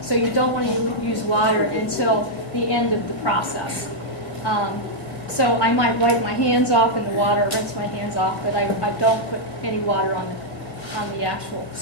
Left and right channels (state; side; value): late; right; 1.7 ms